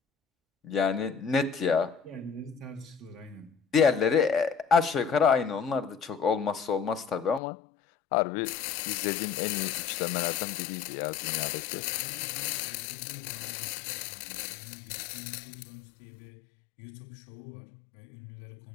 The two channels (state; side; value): drops out; right; at 7.4 s